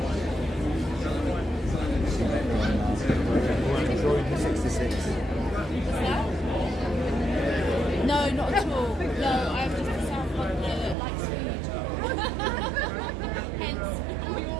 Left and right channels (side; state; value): left; drops out; at 11.0 s